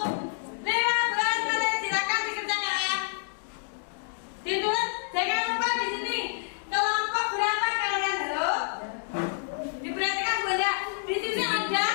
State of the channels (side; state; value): right; silent; digital silence